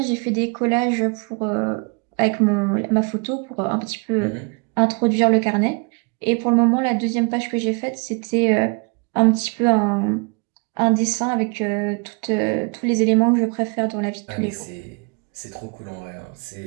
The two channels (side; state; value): left; quieter; 33.3 dB